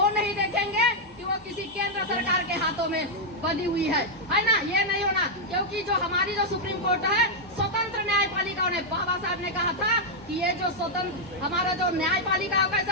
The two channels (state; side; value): normal; both; correlation -0.03